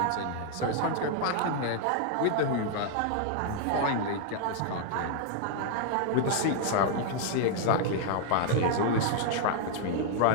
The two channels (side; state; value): both; different; correlation 0.00